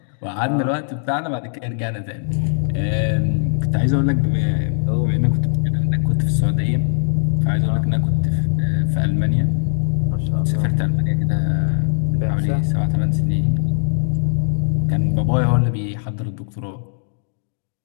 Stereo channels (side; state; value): right; silent; digital silence